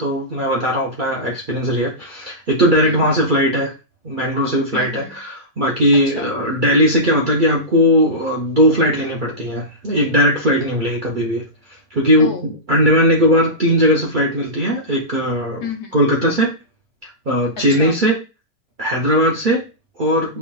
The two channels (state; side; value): normal; both; correlation -0.16